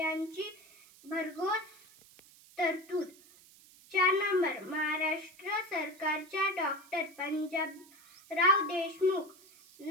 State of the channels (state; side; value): noise; right; hiss, 24 dB below the sound